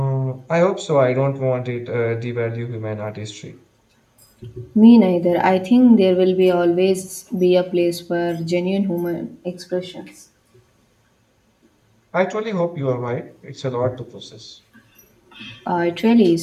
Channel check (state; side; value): identical; both; correlation 1.00